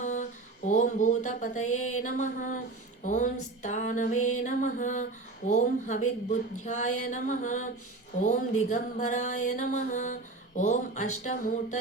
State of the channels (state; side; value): quieter; left; 3.4 dB